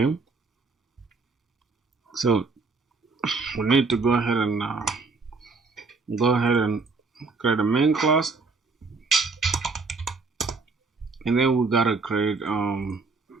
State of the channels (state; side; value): quieter; left; 4.0 dB